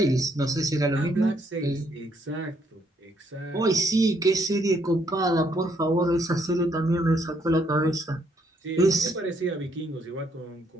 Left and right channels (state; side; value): normal; both; correlation 0.70